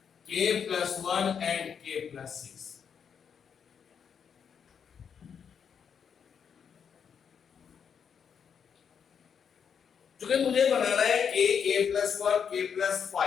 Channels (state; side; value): quieter; right; 7.2 dB